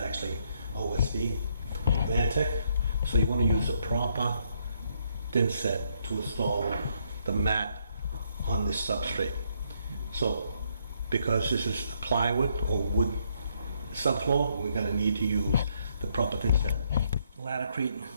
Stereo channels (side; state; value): both; inverted; correlation -0.73